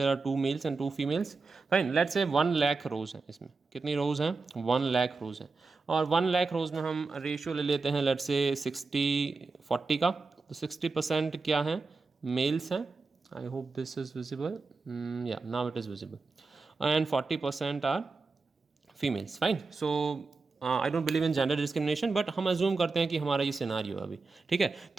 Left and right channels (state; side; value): quieter; left; 4.1 dB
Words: are 2 males and 2 females. Fine, let's say 1 lakh रोज़ हैं। इसमें कितनी रोज़ हैं, 1 लाख रोज़ हैं। और 1 लाख रोज़ में हम रेशियो ले लेते हैं लेट्स से 60-40 का। तो 60% क्या है, मेल्स हैं। I hope this is visible. Yeah, now it is visible. And 40% are females. Fine. So I don't believe in gender discrimination, but हम अज्यूम करते हैं कि हमारा ये सिनारियो है अभी। ठीक है,